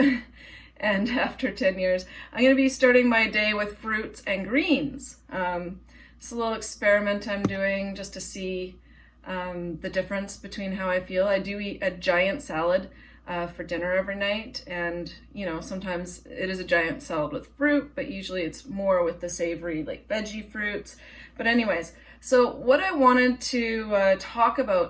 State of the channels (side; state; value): both; identical; correlation 1.00